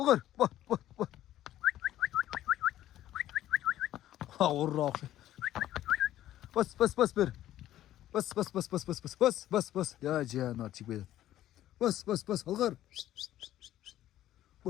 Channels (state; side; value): quieter; right; 13.1 dB